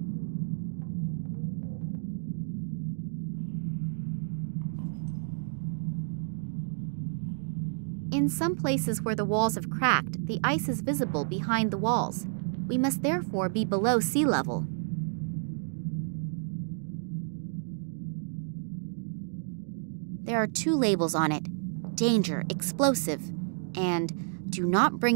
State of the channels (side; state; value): left; silent; digital silence